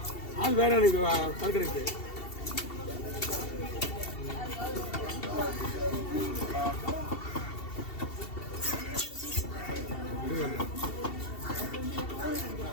ஆள் வேற ஆளு கலக்கிறது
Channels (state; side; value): late; right; 2.7 ms